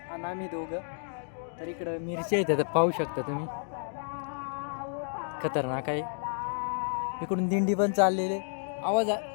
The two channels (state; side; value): silent; right; digital silence